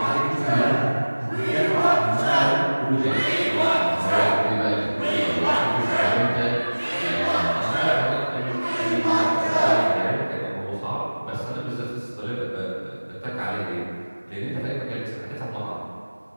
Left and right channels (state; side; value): inverted; both; correlation -1.00